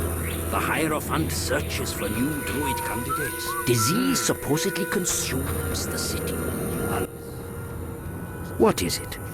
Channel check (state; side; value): identical; both; correlation 1.00